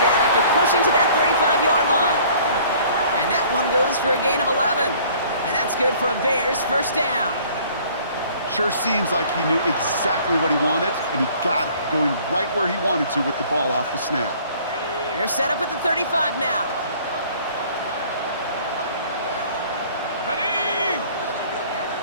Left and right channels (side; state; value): both; inverted; correlation -0.54